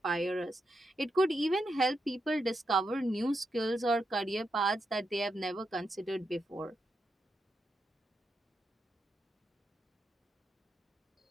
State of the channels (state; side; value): normal; both; correlation 0.84